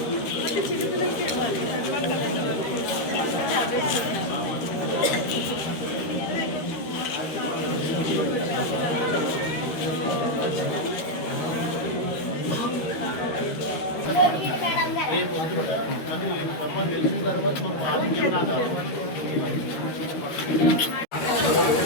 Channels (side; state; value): right; late; 13 ms